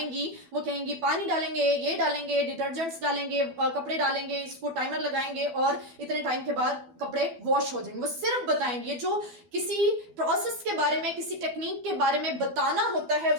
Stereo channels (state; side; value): late; left; 12 ms